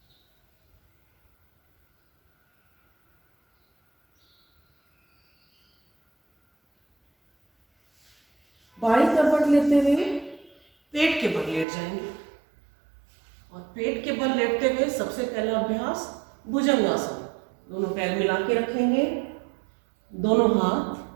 बाई करवट लेते हुए पेट के बल लेट जाएंगे और पेट के बल लेटते हुए सबसे पहला अभ्यास भुजंगासन। दोनों पैर मिला के रखेंगे, दोनों हाथ।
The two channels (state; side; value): drops out; left; at 11.7 s